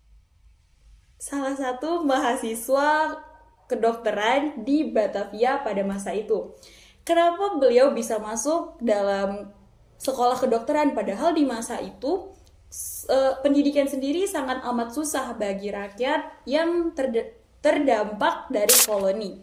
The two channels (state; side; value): identical; both; correlation 1.00